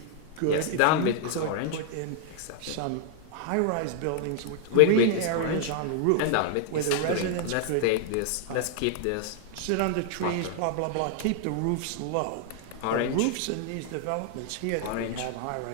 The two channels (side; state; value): both; different; correlation 0.00